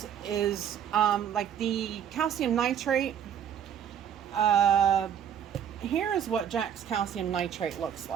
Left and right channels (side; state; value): left; quieter; 9.0 dB